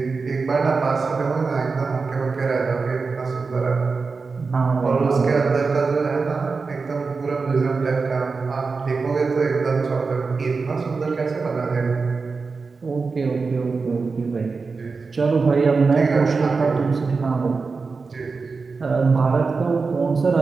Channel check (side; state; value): left; quieter; 4.5 dB